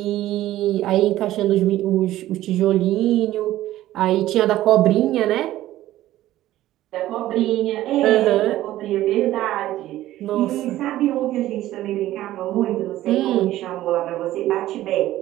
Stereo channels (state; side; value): quieter; left; 14.6 dB